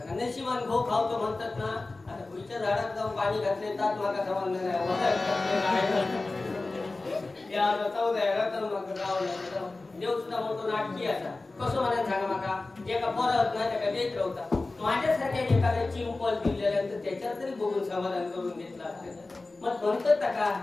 नशिबान घो खावतो म्हणतात ना आता पुढच्या झाडात जाऊन पाणी घातले तात माका समजलं नाही देव सुद्धा मोठो नाटकी असा कसं म्हणायला सांगा माका जे का परत नाही त्या देत राहता माझ्यासारख्या एखाद्या चिंपल दिलेल्यानंतर त्याच्यात तरी बघून समाधान करून घेतला मग म्हणतात का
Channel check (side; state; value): right; quieter; 3.3 dB